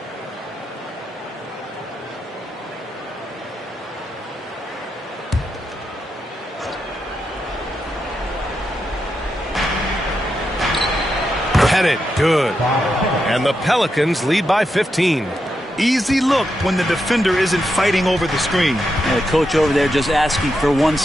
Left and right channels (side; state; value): both; normal; correlation 0.85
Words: Headed, good. And the Pelicans lead by 15. Easy look when the defender isn't fighting over the screen. And the coach over there just asking for one